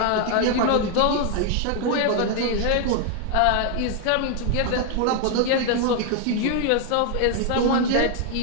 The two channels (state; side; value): different; both; correlation 0.00